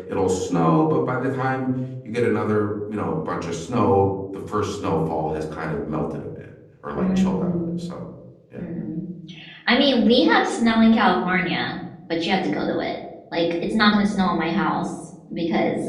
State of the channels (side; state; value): both; identical; correlation 1.00